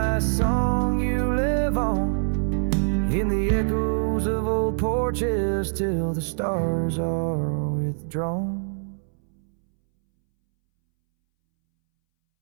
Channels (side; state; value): left; silent; 62 dB below the other